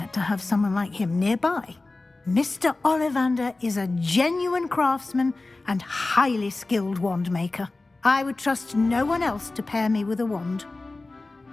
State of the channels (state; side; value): quieter; right; 3.2 dB